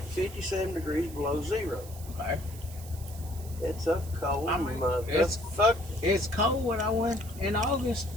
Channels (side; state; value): right; noise; hiss, 17 dB below the sound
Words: 57 degrees below zero. Okay. It's a cold I mean, it's- motherfucker. It's cold when I went in August